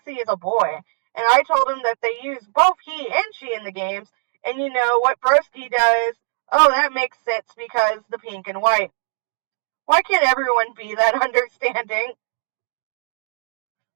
is a boy. And I told him that they use both he and she in the games. And you know what Broski does? Oh, that makes sense because the pink and white. Why can't everyone be that understanding?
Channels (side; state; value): left; silent; digital silence